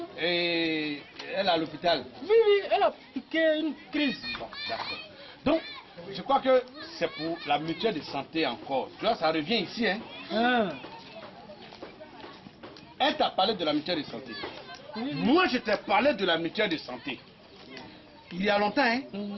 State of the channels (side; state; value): both; identical; correlation 1.00